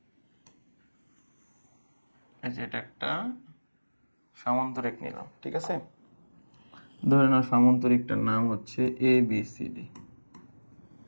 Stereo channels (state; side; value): inverted; both; correlation -1.00